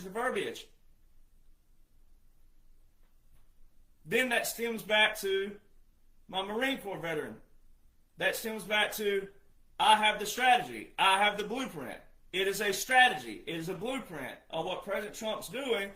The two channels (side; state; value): both; identical; correlation 1.00